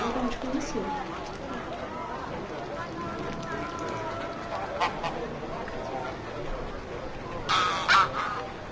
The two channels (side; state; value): both; identical; correlation 1.00